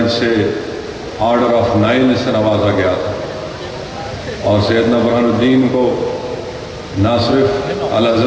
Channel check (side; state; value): both; identical; correlation 1.00